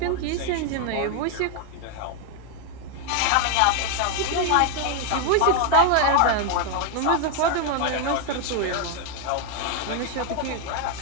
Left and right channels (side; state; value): both; different; correlation 0.01